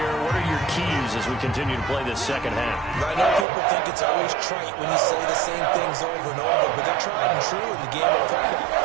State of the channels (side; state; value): left; drops out; at 3.5 s